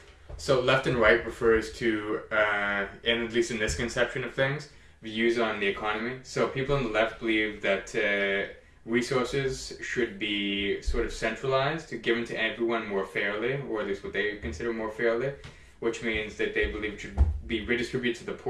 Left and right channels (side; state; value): both; identical; correlation 1.00